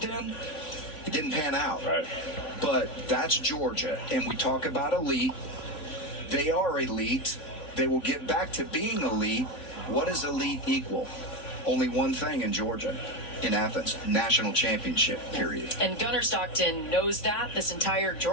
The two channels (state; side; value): late; right; 3.5 ms